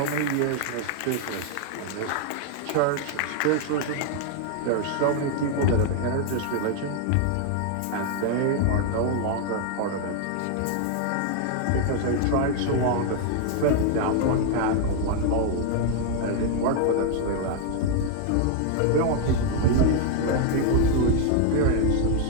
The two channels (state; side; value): different; both; correlation 0.00